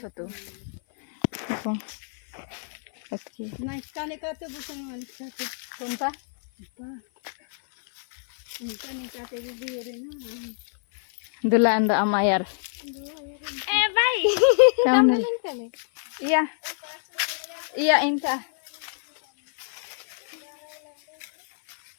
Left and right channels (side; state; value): right; silent; 56 dB below the other